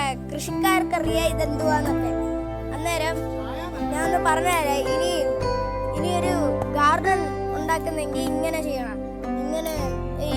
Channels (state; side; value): identical; both; correlation 1.00